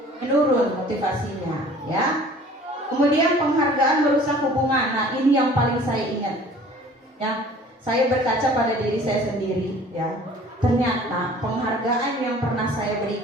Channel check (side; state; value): both; normal; correlation 0.49